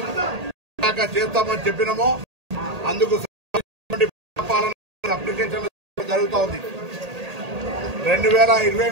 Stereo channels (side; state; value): left; late; 1.8 ms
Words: చేస్తామని చెప్పినామో అందుకు అప్లికేషన్ జరుగుతూ ఉంది.